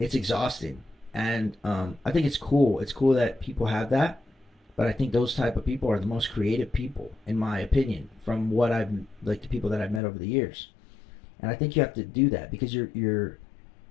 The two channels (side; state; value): right; drops out; at 10.0 s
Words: exhausting, and I think it's cool. It's cool that people have that, but I think those type of people are the most creative people, in my opinion, from what I've like the people that I've met over the years. And I think you have to do that because you're